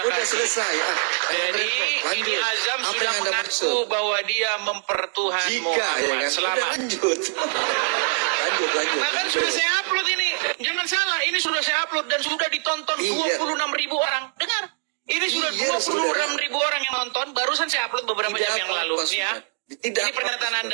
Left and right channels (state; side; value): silent; left; 63 dB below the other